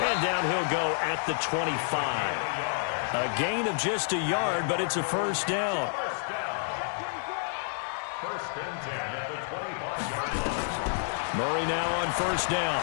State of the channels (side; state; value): right; silent; digital silence